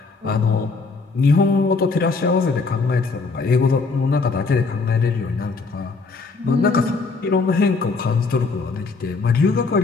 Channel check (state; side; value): quieter; right; 4.2 dB